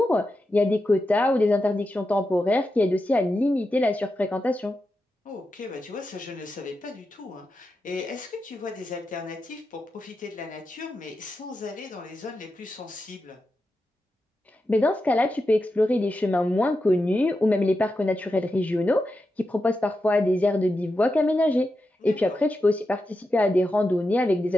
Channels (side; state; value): both; normal; correlation 0.89